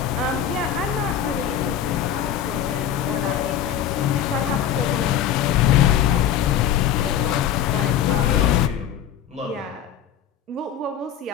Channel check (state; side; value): quieter; right; 9.5 dB